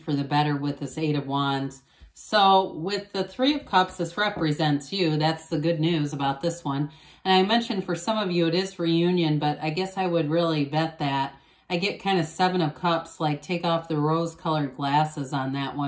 the better with this 8 of Wands. So with the 3 of Cups, this represents you. That's the good news about this one. And I mentioned for some of you it is reunion, but I guess I would really bet that. I get kind of 7 of Cups, like take off the rose-colored glasses on that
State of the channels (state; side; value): identical; both; correlation 1.00